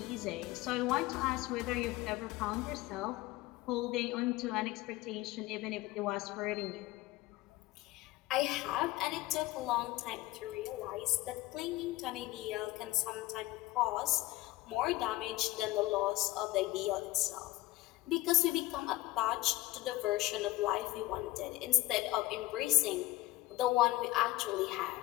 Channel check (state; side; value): quieter; right; 18.4 dB